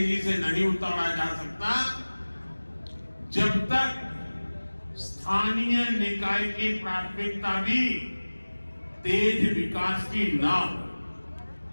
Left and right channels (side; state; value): both; inverted; correlation -1.00